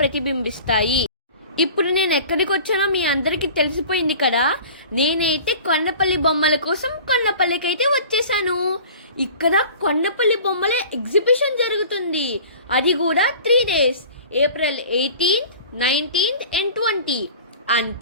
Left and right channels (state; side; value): inverted; both; correlation -0.42